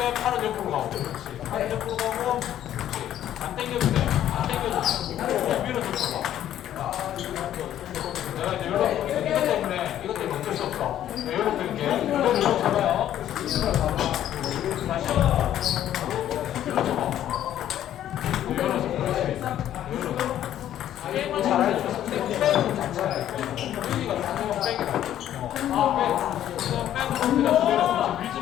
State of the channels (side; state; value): right; quieter; 11.6 dB